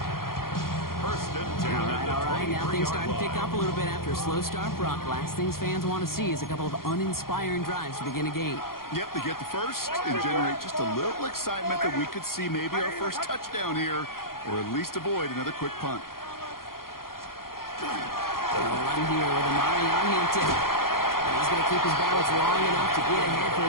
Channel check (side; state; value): right; late; 0.92 ms